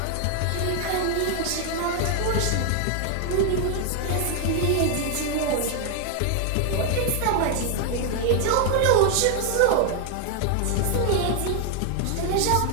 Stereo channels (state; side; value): different; both; correlation 0.00